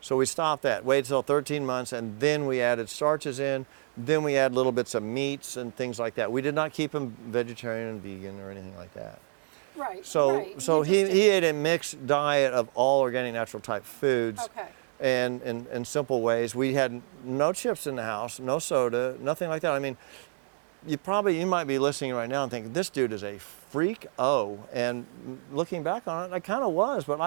So we stopped that, waited till 13 months, and then we added starches in. Then we add little bits of meats and things like that. We did not keep him vegetarian and vegan or anything like that. Right. So, right. so You just he did- ate a mixed diet of all organic, natural type foods. Okay. And in simple ways. We had no chips in the house, no soda, nothing like that. I mean, you might be listening right now and thinking, this dude is a freak. And looking back on it, I kind of was, but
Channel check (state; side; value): silent; left; digital silence